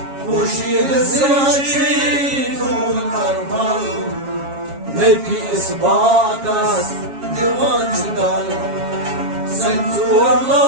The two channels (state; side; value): late; left; 7.3 ms